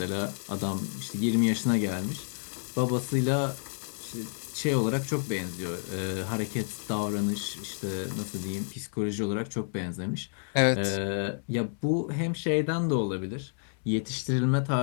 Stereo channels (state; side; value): silent; right; digital silence